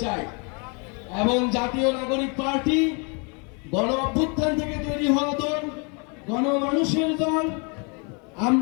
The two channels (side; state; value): right; quieter; 34.8 dB